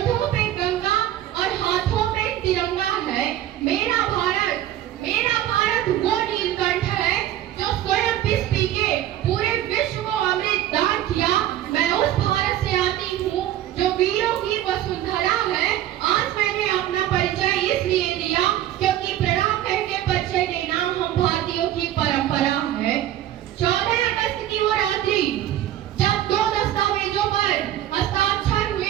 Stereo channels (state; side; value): quieter; left; 12.6 dB